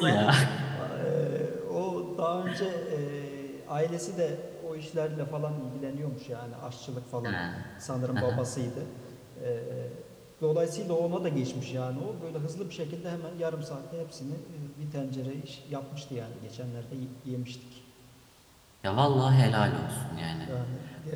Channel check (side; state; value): both; identical; correlation 1.00